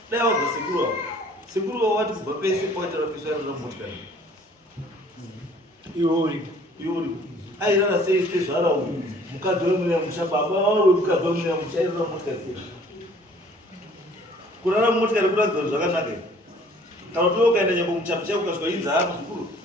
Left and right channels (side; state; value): both; normal; correlation 0.55